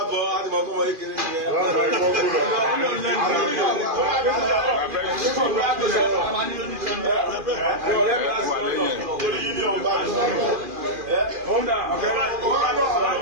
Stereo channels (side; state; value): left; late; 2.4 ms